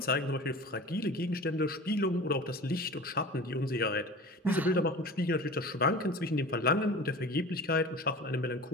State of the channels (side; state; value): both; normal; correlation 0.37